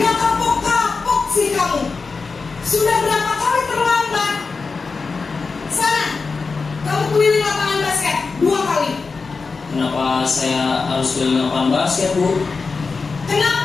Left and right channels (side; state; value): right; quieter; 4.5 dB